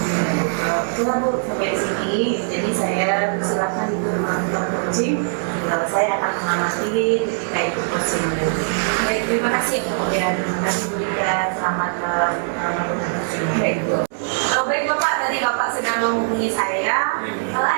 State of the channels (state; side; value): silent; left; 65 dB below the other